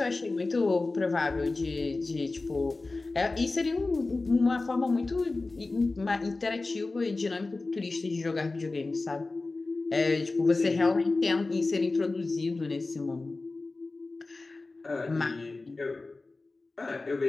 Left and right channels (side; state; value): right; quieter; 3.4 dB